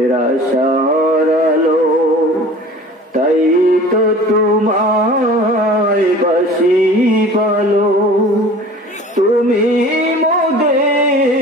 আশার আলো, তাই তো তোমায় বাসি ভালো। তুমি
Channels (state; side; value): normal; both; correlation 0.44